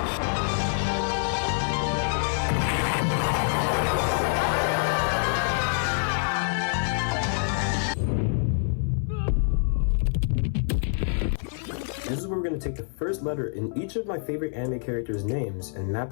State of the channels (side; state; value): right; silent; 58 dB below the other